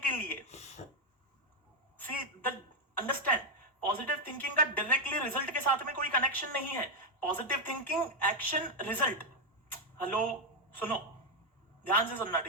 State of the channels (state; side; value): normal; both; correlation 0.03